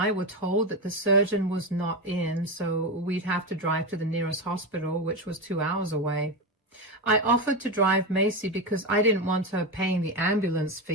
were told that the surgeon was not in, so we'd have to drive to the nearest hospital, which was 2 hours away. I offered to drive Macy because I didn't want her paying the ambulance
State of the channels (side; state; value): both; normal; correlation 0.15